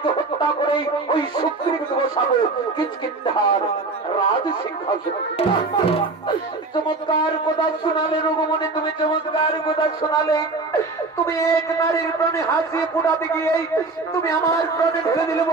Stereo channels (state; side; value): quieter; left; 3.7 dB